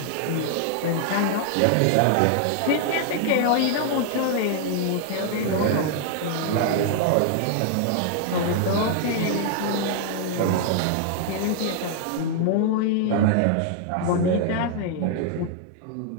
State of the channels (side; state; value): both; different; correlation 0.00